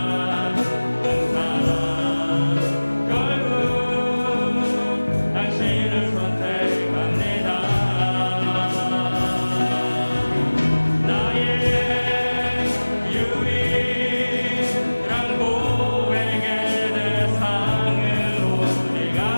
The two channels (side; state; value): both; inverted; correlation -1.00